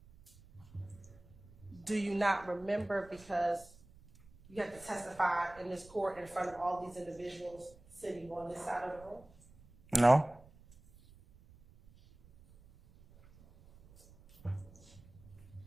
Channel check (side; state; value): right; noise; rumble, 24 dB below the sound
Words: Do you not remember because you have to testify in this court in front of all these individuals sitting on this side of the room? No.